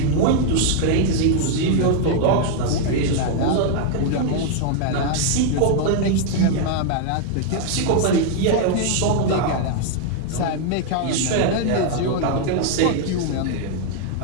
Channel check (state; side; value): different; both; correlation 0.00